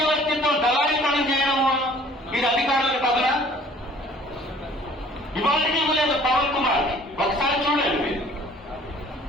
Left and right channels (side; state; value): both; normal; correlation 0.53